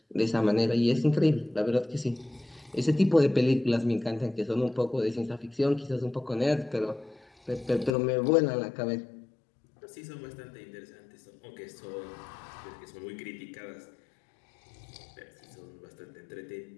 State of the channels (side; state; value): right; drops out; at 8.0 s